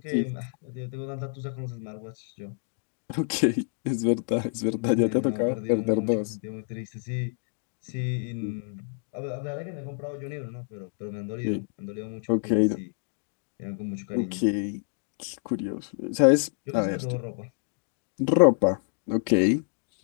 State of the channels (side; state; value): right; silent; digital silence